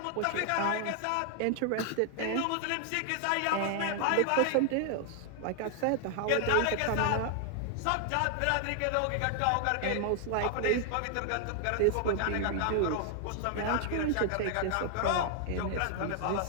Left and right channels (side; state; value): both; different; correlation 0.00